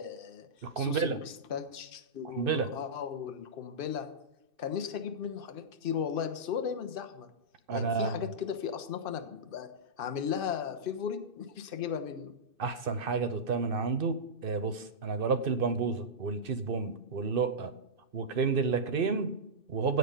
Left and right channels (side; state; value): left; late; 2.6 ms